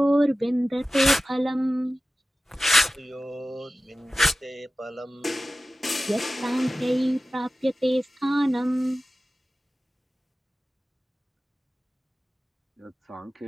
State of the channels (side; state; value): both; normal; correlation 0.96